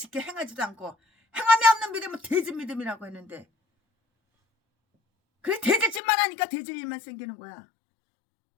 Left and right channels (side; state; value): right; drops out; at 6.0 s